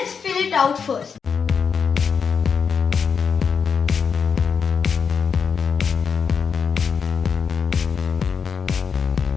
fill it out first.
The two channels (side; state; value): right; quieter; 6.2 dB